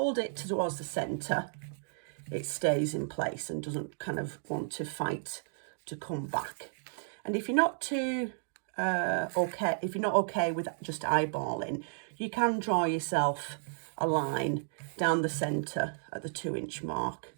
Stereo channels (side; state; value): left; silent; digital silence